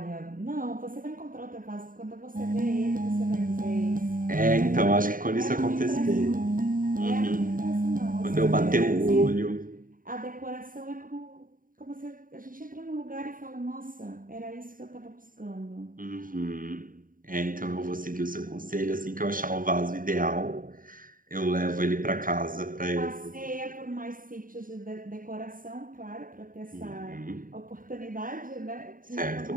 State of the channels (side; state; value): left; late; 0.40 ms